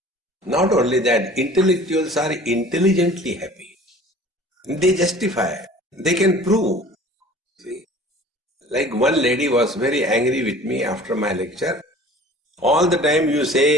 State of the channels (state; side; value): normal; both; correlation 0.46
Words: Not only that, intellectuals are intelligently happy. They justify, they can prove. See? Like one lady was very angry with me after my lecture. All the time you